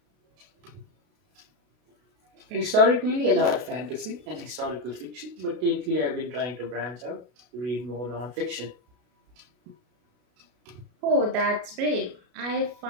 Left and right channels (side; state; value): left; late; 33 ms